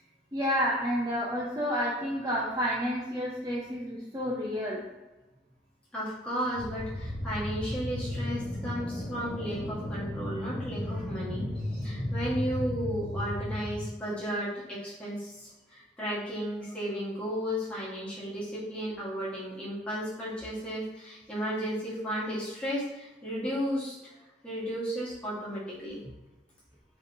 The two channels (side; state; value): both; normal; correlation 0.58